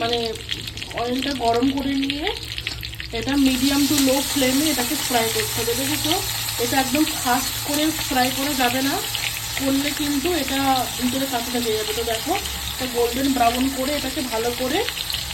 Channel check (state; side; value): identical; both; correlation 1.00